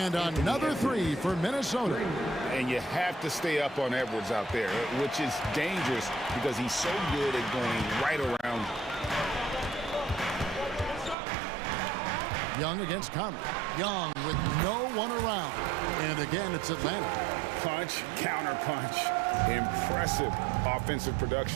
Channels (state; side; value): drops out; left; at 11.2 s